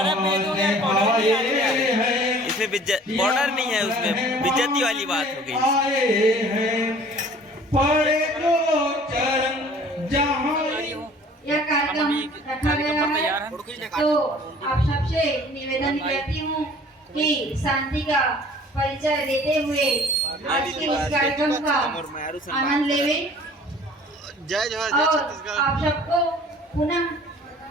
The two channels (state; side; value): normal; both; correlation 0.50